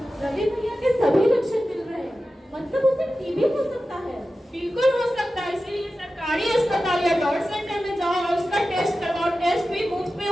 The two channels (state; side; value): normal; both; correlation 0.94